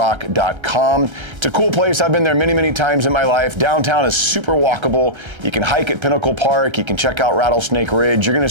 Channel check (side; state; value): left; late; 1.3 ms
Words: It's a cool place. I've been there many, many times in my life. Downtown is super walkable. You can hike at Pinnacle Park. You can check out Rattlesnake Ridge. You're gonna